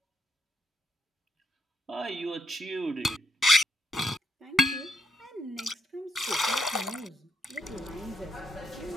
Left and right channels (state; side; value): normal; both; correlation 0.77